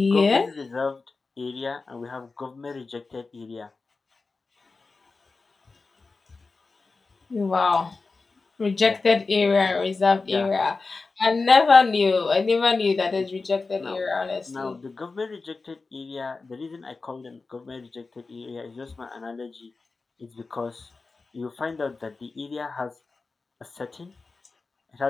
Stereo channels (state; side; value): quieter; right; 4.0 dB